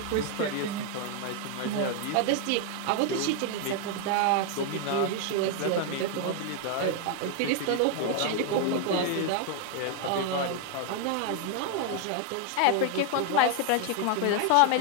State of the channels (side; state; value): both; different; correlation 0.00